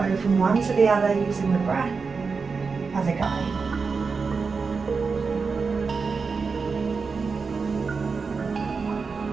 from one to the other using the breath as a guide.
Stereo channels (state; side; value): quieter; left; 4.9 dB